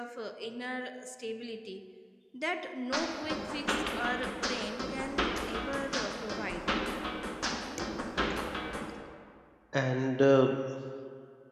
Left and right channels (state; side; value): identical; both; correlation 1.00